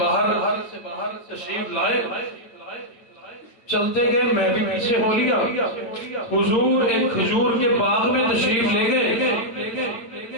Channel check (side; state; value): right; late; 8.8 ms